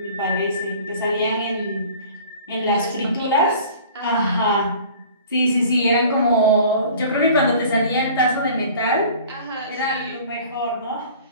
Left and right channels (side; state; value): both; inverted; correlation -0.46